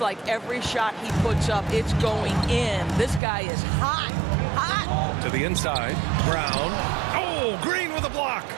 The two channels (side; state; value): left; drops out; at 3.2 s